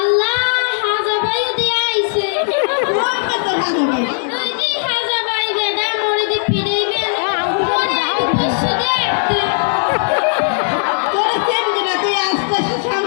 হাজা ভাই দিয়ে আইছে ওই যে হাজা ভাই ম্যাডাম মোরে দি পিড়াইবে মোরে আইবে পশু দেখতে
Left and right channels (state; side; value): silent; right; 66 dB below the other